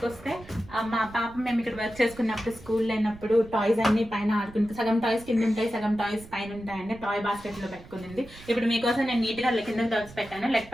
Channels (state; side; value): noise; right; rumble, 19 dB below the sound